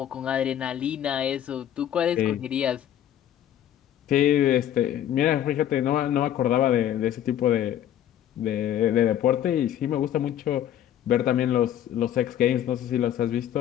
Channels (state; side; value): quieter; right; 11.0 dB